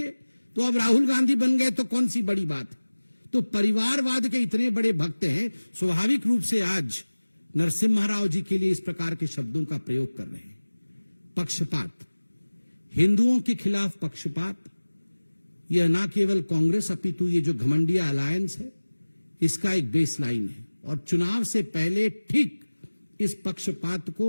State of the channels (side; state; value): both; inverted; correlation -1.00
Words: तो अब राहुल गांधी बन गए तो कौन सी बड़ी बात है। तो परिवारवाद के इतने बड़े भक्त हैं, स्वाभाविक रूप से आज नरसिम्हा राव जी के लिए इस प्रकार के शब्दों का प्रयोग कर रहे हैं। पक्षपात, हिंदुओं के खिलाफ पक्षपात, यह ना केवल कांग्रेस अपितु ये जो घमंडिया अलायंस है इसका एक बेसलाइन है। और चुनाव से पहले ठीक इस पक्षपात